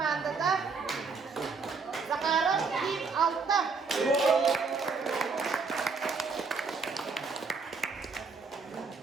да? Захаров, Дим, Алта.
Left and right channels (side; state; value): left; quieter; 4.7 dB